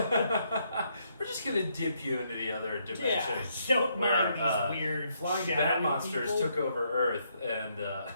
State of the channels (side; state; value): both; inverted; correlation -0.74